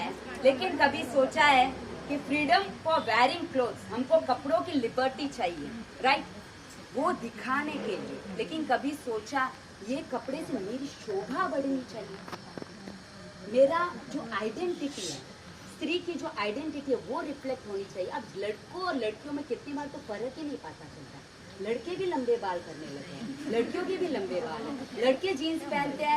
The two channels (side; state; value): both; identical; correlation 1.00